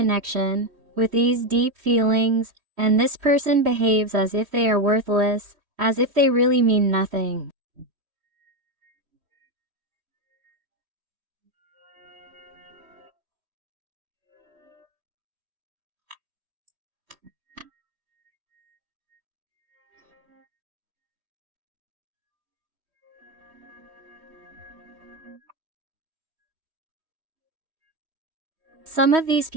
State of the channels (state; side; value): late; left; 3.1 ms